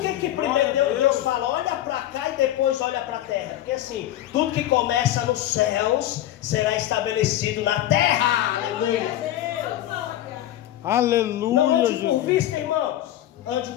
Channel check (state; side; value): quieter; right; 13.2 dB